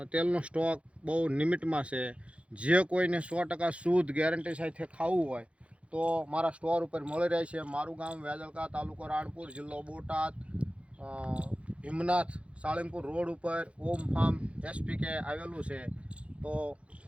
તેલનો સ્ટોક બહુ લિમિટમાં છે. જે કોઈને 100% શુદ્ધ ગેરંટી સાથે ખાવું હોય તો મારા સ્ટોર ઉપર મળી રહે છે. મારું ગામ વેજલકા, તાલુકો રાણપુર, જિલ્લો બોટાદ, હિમનાથ સાળંગપુર રોડ ઉપર ઓમ ફાર્મ એસપીકે આવેલું છે. તો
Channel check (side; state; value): left; late; 0.061 ms